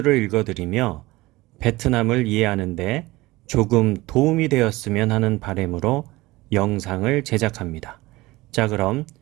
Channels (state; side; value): quieter; left; 20.0 dB